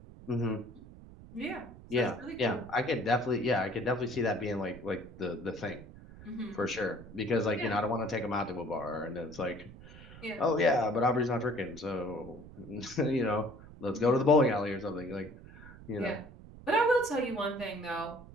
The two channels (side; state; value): right; noise; rumble, 18 dB below the sound